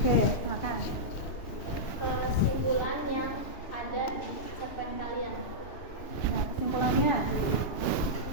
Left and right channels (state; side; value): late; right; 2.9 ms